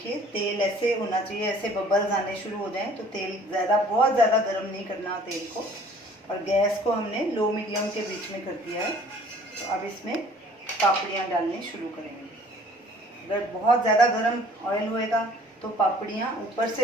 तेल ऐसे होना चाहिए, ऐसे बबल्स आने शुरू हो जाएं तो तेल बहुत ज़्यादा गर्म नहीं करना तेल को। और गैस को हमने लो मीडियम के बीच में कर दिया है। तो अब इसमें पापड़ियाँ डालनी शुरू करेंगे। अगर बहुत ज़्यादा गर्म ऑयल होएगा तो पापड़ियाँ ऊपर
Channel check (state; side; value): normal; both; correlation 0.53